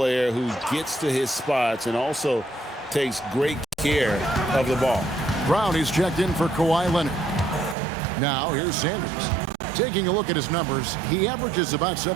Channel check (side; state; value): left; drops out; at 7.8 s